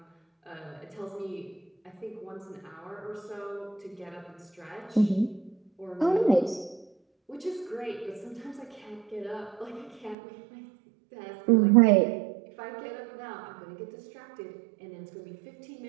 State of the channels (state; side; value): drops out; left; at 10.2 s